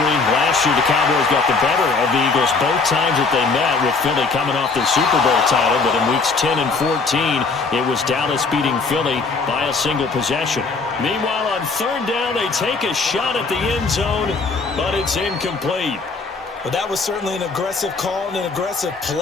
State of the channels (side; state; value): right; quieter; 4.2 dB